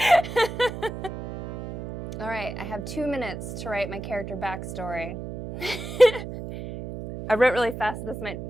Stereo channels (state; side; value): noise; right; hum, 8 dB below the sound